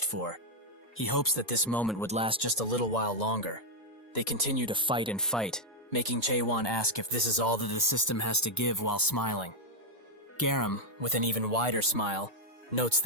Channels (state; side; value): normal; both; correlation 0.00